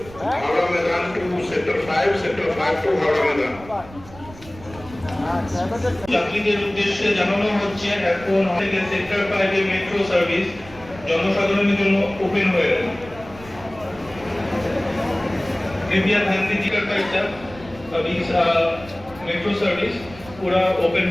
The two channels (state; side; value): noise; right; rumble, 19 dB below the sound